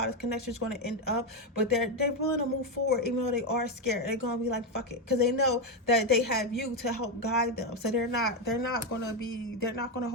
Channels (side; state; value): both; normal; correlation 0.08